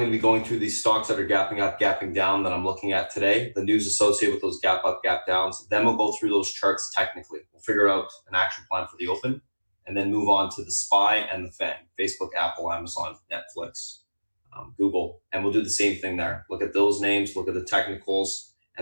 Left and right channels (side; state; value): both; inverted; correlation -1.00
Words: to be going through these stocks that are gapping up, gapping down that I'm looking at today, the news associated with those gap up, gap downs. Then we'll go through those charts technically. We'll figure out an action plan for the open and then move on to the SPY and the FANG, Facebook, Apple, Amazon, Netflix, Google. And we'll do the same thing there. Look at those names, look at the technicals,